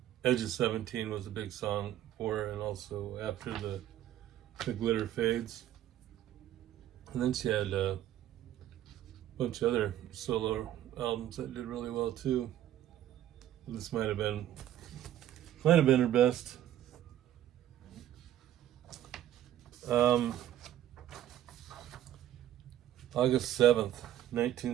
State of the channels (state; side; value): quieter; left; 12.3 dB